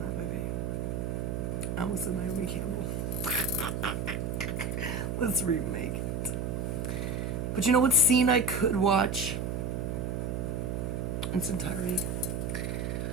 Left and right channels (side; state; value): right; noise; hum, 2 dB below the sound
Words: that movie. I almost said Naomi Campbell. Let's remake it. But you know what scene I could watch in its entirety?